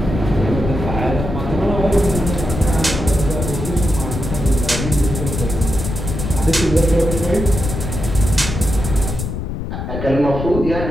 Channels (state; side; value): noise; left; rumble, 5 dB below the sound